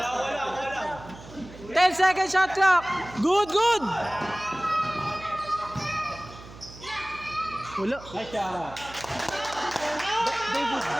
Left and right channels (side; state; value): right; noise; hum, 17 dB below the sound